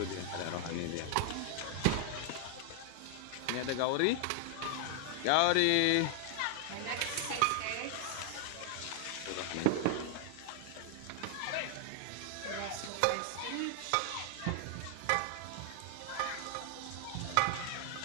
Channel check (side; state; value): both; different; correlation 0.00